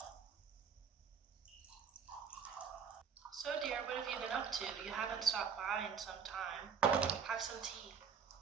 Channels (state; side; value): quieter; left; 6.5 dB